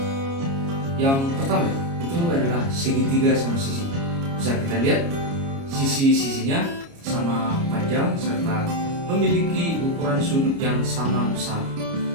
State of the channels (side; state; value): left; late; 29 ms